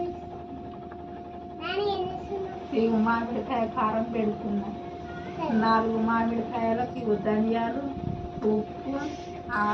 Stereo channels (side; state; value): both; identical; correlation 1.00